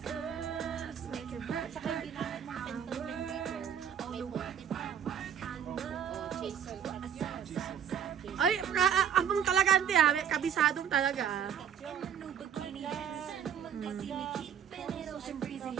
Saka hindi na sentiment paper. May puti pa. O, chaser. Ay, abang talaga ante may kabisadong talaga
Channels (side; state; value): left; quieter; 8.6 dB